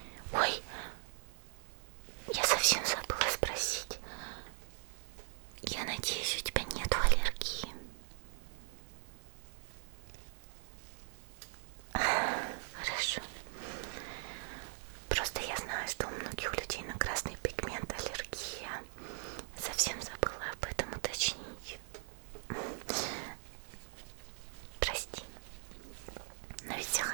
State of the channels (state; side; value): silent; left; digital silence